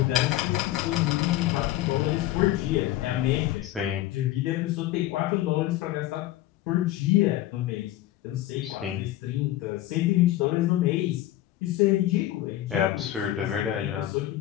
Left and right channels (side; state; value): right; quieter; 14.6 dB